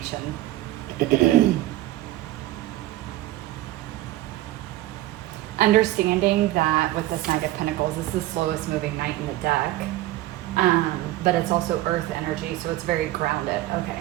Understanding that with this Knight of Pentacles, this is the slowest moving knight in the deck. But it's also earth energy, so it's very grounded. Okay.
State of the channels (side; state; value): left; quieter; 15.9 dB